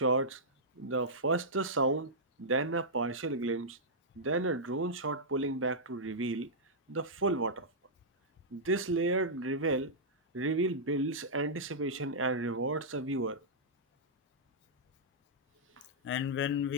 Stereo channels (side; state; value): both; normal; correlation -0.12